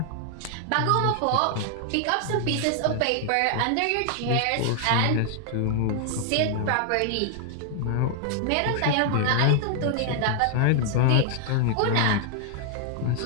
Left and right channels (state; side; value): different; both; correlation 0.00